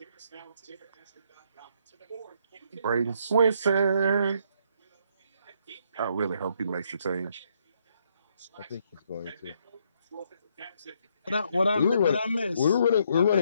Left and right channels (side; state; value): both; inverted; correlation -0.71